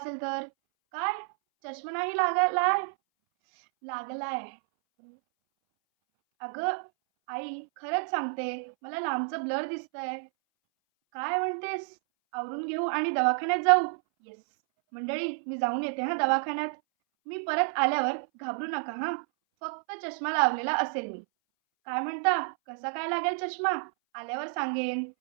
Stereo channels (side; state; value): left; silent; 58 dB below the other